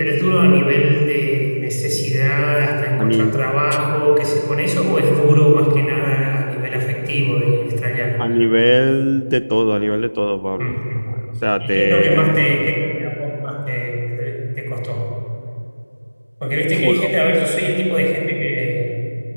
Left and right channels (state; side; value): inverted; both; correlation -1.00